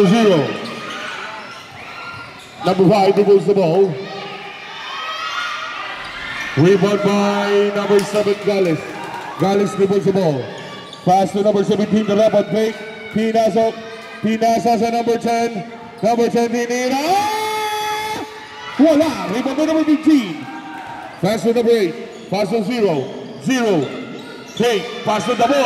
0. Number 5 dribbles the ball. Rebound by number 7, Galis. Galis dribbles the ball. Pass to number 17, the Rabat fake. Pinasok. Pinasa sa number 10. Number 10, tinira. Wala. Rebound by number 15. Pass to number 8. Pass to 0. 0. Take. Pass to the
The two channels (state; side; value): identical; both; correlation 1.00